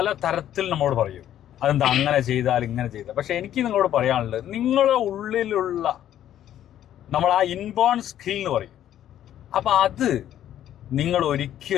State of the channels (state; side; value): quieter; right; 11.4 dB